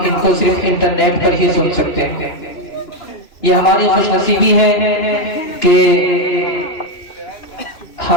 کو صرف انٹرنیٹ پر ہی سن سکتے ہیں۔ یہ ہماری خوش نصیبی ہے کہ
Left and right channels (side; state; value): right; late; 2.5 ms